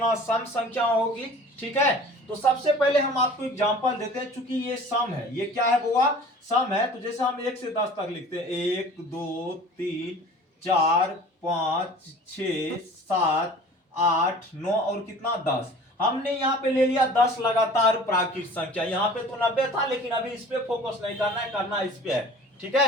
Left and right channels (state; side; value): normal; both; correlation 0.45